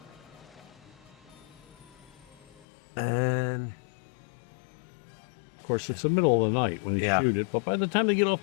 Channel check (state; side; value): drops out; right; at 2.7 s